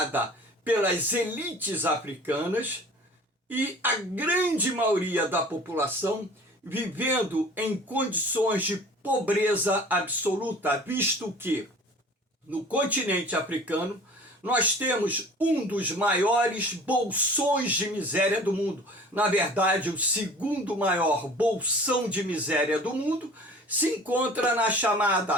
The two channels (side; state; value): both; normal; correlation 0.45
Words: pelas elites africanas e a grande maioria da população vivendo em condições de pobreza absoluta, visto que no continente africano nós temos um dos maiores bolsões de miséria do mundo. Na verdade, o segundo maior bolsão de miséria do mundo, se encontra na